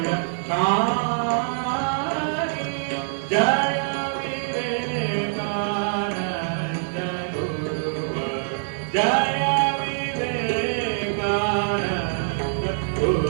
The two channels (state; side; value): silent; left; 62 dB below the other